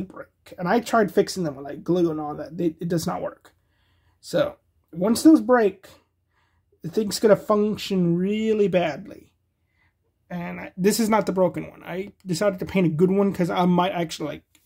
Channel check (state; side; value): identical; both; correlation 1.00